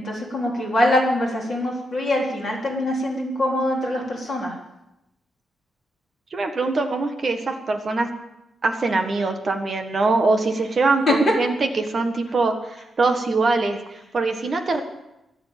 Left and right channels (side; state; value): both; normal; correlation 0.83